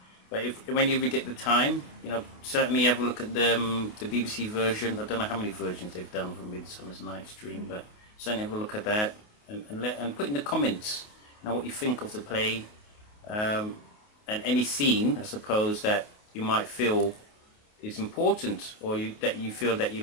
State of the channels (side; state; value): right; late; 28 ms